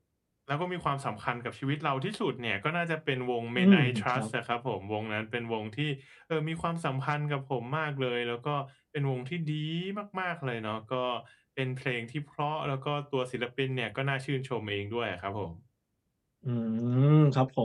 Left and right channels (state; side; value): identical; both; correlation 1.00